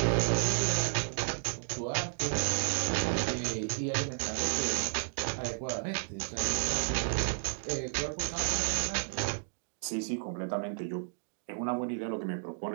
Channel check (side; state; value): left; silent; digital silence